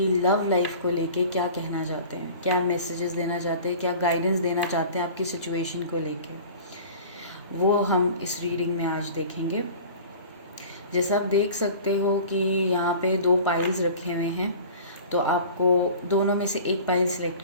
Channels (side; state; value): both; inverted; correlation -0.41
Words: लव लाइफ को लेके क्या कहना चाहते हैं, क्या मैसेजेस देना चाहते हैं, क्या गाइडेंस देना चाहते हैं आपकी सिचुएशन को लेके, वो हम इस रीडिंग में आज देखेंगे। जैसा आप देख सकते हो कि यहाँ पे दो पाइल्स रखे हुए हैं, तो आपको दोनों में से एक पाइल